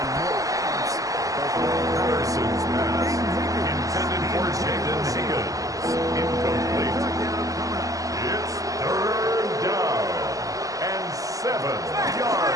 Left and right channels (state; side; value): late; left; 0.17 ms